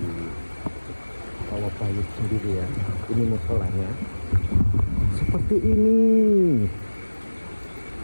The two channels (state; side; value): inverted; both; correlation -1.00